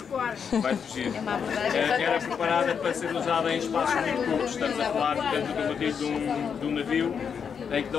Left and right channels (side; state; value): right; quieter; 6.8 dB